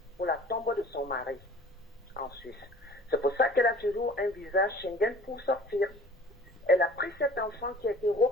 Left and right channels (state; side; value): normal; both; correlation 0.48